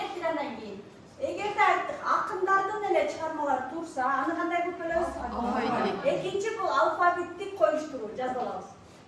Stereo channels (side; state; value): both; identical; correlation 1.00